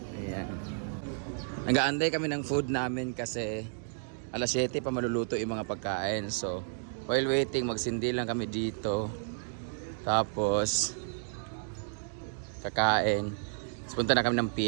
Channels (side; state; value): left; silent; digital silence